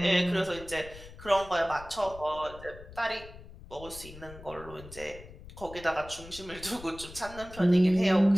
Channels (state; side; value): noise; left; rumble, 16 dB below the sound